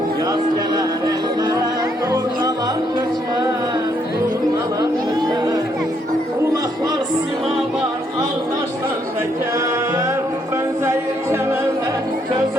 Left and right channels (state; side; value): normal; both; correlation 0.72